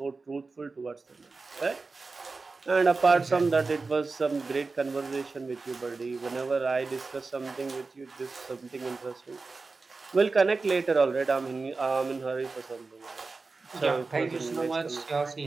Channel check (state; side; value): quieter; left; 4.0 dB